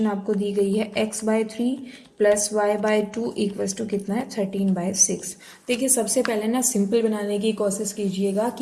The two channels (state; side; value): identical; both; correlation 1.00